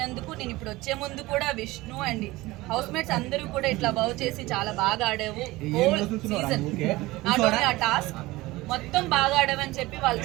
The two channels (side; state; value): left; quieter; 19.6 dB